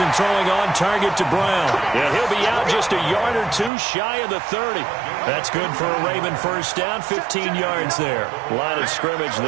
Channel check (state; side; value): drops out; left; at 3.7 s